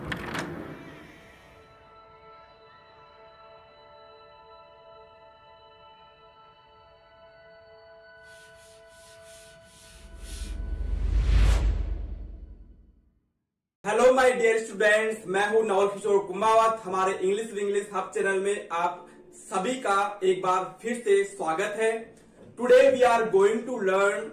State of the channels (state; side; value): identical; both; correlation 1.00